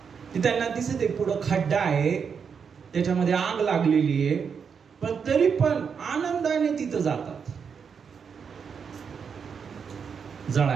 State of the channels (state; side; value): quieter; left; 6.4 dB